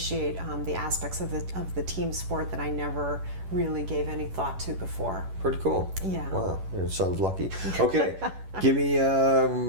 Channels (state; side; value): late; left; 11 ms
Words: the aspects of the team sport that I never really gave any thought to before. Pretty cool. Yeah. Wow, your son's lucky. Okay, give me